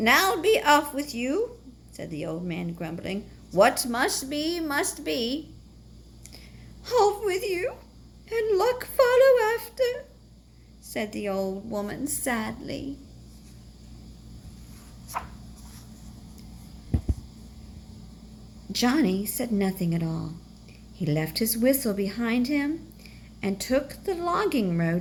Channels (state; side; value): identical; both; correlation 1.00